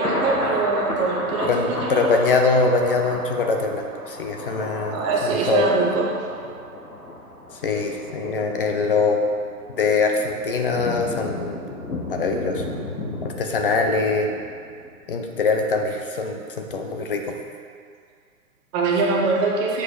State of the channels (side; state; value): both; normal; correlation 0.26